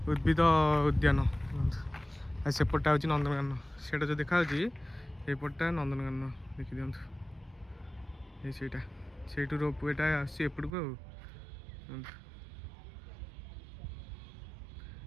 उद्भिद उद्यान सेपटा हूँ नंदनकानन से जो देखा सेपटा नंदनकानन देखी दिखाँ ये रोप एटा आसपट को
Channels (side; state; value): left; drops out; at 10.8 s